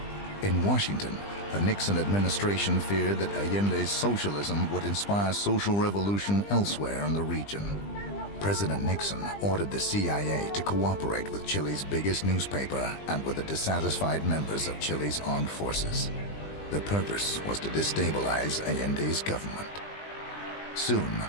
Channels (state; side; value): late; right; 20 ms